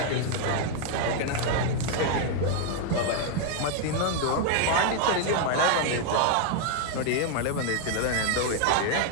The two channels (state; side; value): different; both; correlation 0.00